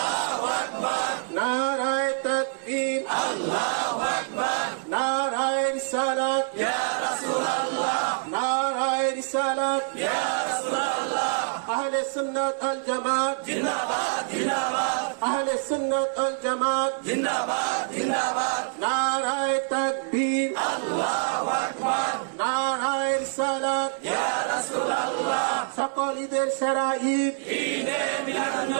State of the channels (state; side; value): silent; left; digital silence